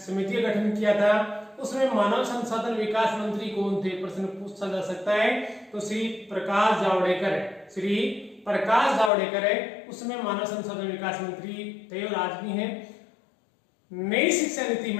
समिति का गठन किया था, उसमें मानव संसाधन विकास मंत्री कौन थे, प्रश्न पूछा जा सकता है। तो श्री प्रकाश जावड़ेकर है, उसमें मानव संसाधन विकास मंत्री थे और आज भी हैं। नई शिक्षा नीति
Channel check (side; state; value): right; drops out; at 9.1 s